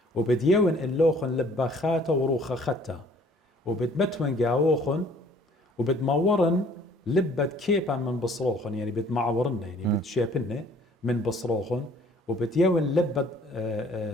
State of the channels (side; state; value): both; normal; correlation 0.56